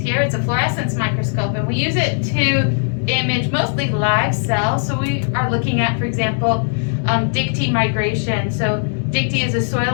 It's a fluorescence microscope, and we use it to image mostly live cells. So we are looking at, for example, Dictee migration. So Dictee is a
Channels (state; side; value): silent; right; digital silence